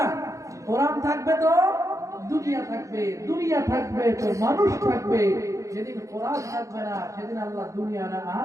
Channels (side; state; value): left; late; 0.15 ms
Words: কোরআন থাকবে তো দুনিয়া থাকবে, দুনিয়া থাকবে তো মানুষ থাকবে। যেদিন কোরআন থাকবে না সেদিন আল্লাহ দুনিয়া